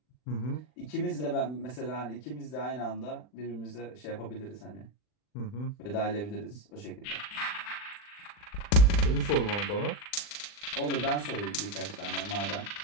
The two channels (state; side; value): late; right; 39 ms